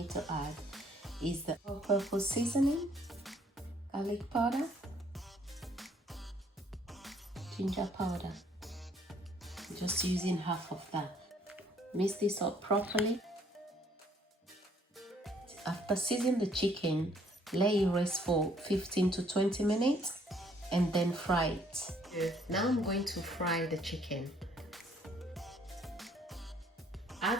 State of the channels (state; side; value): normal; both; correlation 0.64